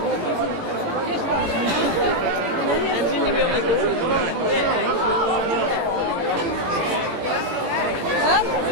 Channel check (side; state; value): left; late; 18 ms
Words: En zien die weer met